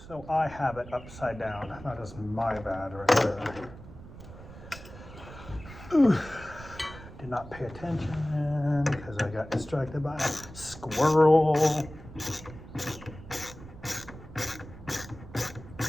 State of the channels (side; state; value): right; noise; rumble, 16 dB below the sound